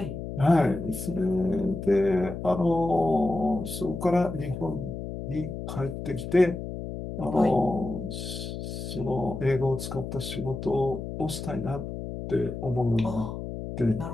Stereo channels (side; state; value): left; noise; hum, 7 dB below the sound